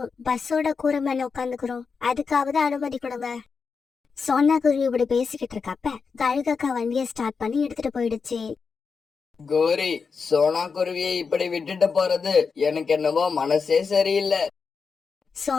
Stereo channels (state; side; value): quieter; right; 5.3 dB